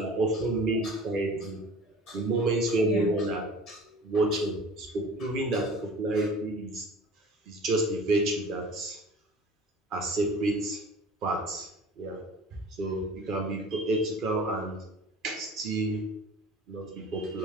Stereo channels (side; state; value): both; normal; correlation 0.43